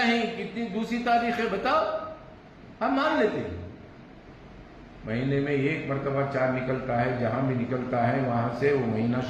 ہیں, کتنی دوسری تاریخیں بتاؤ, ہم مان لیتے ہیں. مہینے میں ایک مرتبہ چاند نکلتا ہے, جہاں بھی نکلتا ہے وہاں سے وہ مہینہ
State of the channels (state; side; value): identical; both; correlation 1.00